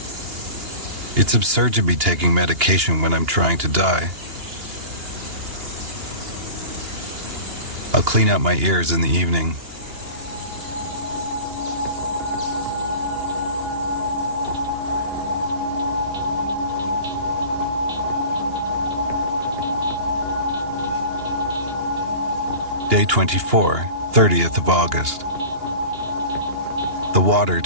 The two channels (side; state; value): left; late; 2.8 ms